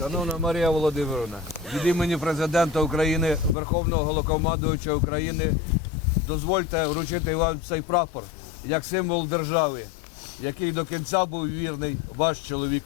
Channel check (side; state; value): right; drops out; at 3.6 s